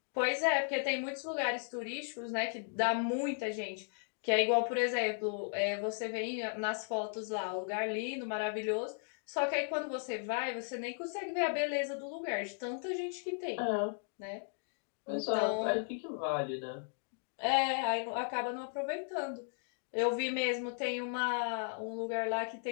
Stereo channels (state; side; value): silent; right; 54 dB below the other